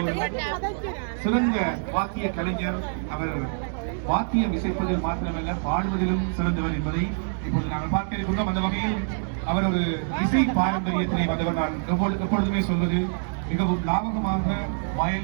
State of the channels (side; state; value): left; silent; digital silence